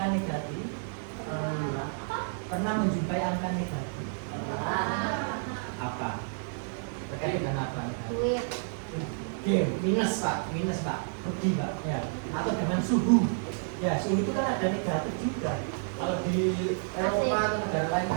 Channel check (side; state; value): left; silent; digital silence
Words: negatif? Pernah menjumpai angka negatif? Apa? Terkait dengan apa? Minus pak, rugi pak, ya. Atau dengan suhu, ya suhu itu kan ada negatif juga. Kalau di Eropa atau negara lain